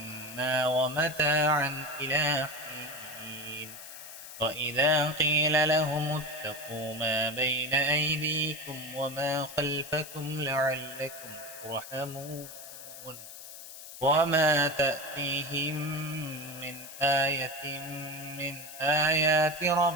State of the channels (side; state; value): left; noise; hiss, 13 dB below the sound